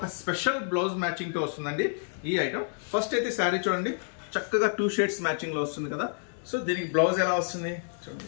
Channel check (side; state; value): right; silent; 59 dB below the other